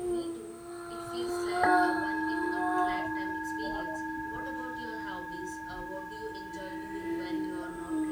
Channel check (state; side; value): identical; both; correlation 1.00